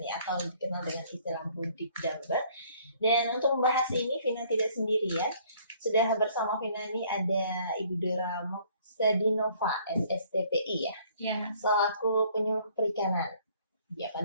nih, atau dikenal dengan istilah budik damber. Dan untuk membahas ini Vina tidak sendiri ya. Sudah bersama Vina ini ada Ibu Dora Moksadinova, SSTPI ya, Ya, selaku penyuluh perikanan. Ya,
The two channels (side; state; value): both; inverted; correlation -0.60